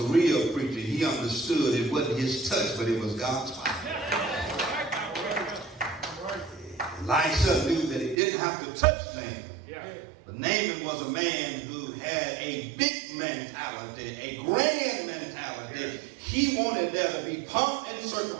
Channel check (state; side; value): drops out; left; at 8.2 s